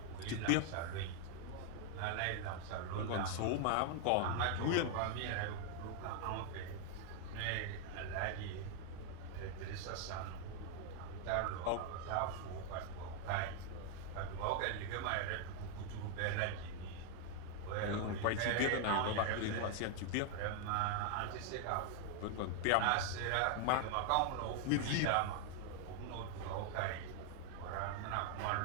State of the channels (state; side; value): different; both; correlation 0.00